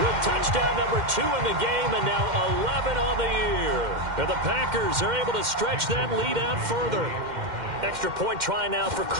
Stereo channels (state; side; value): late; left; 2.1 ms